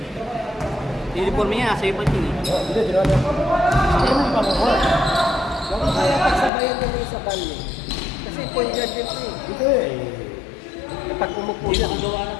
Uniform niya, sa iba yun eh. Hindi, ginala. Ano yung pamukuha? Baka kaya pagsabayan ko sa bali. Kasi point guard din eh. Ito eh. Pag umupo siya,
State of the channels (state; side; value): drops out; right; at 6.5 s